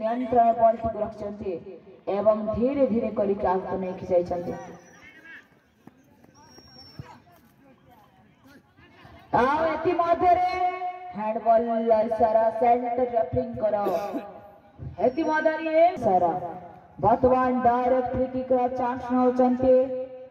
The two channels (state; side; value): identical; both; correlation 1.00